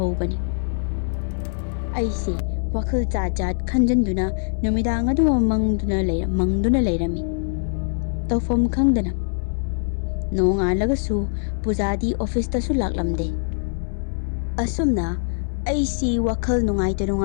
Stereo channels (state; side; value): silent; right; 63 dB below the other